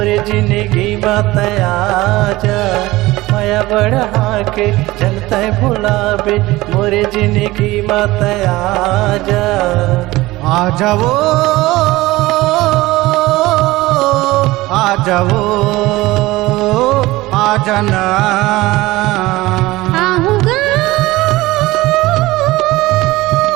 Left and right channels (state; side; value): quieter; left; 19.0 dB